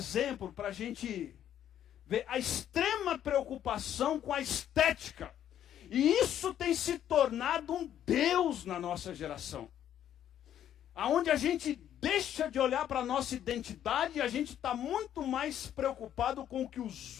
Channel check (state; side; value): quieter; right; 10.6 dB